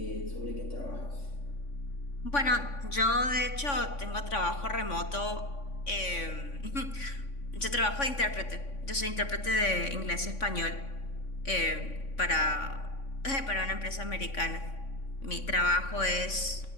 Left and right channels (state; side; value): late; right; 3.5 ms